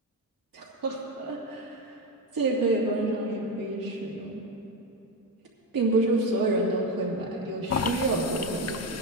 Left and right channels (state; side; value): normal; both; correlation 0.14